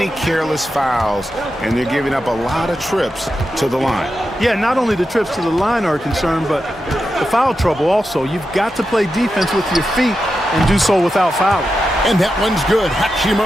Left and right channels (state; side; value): normal; both; correlation 0.89